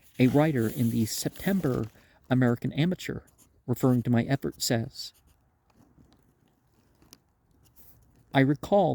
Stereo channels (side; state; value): both; identical; correlation 1.00